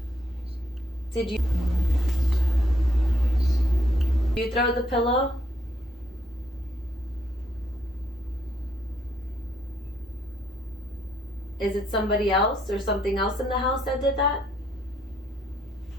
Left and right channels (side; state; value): both; normal; correlation 0.72